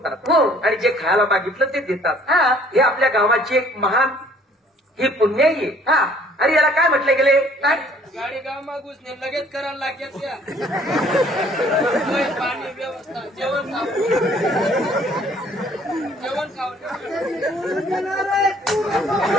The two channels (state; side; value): normal; both; correlation 0.58